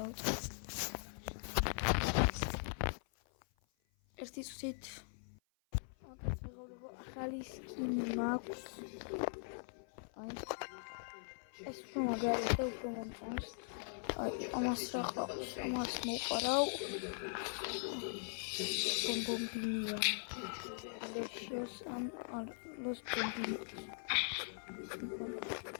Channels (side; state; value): right; silent; 50 dB below the other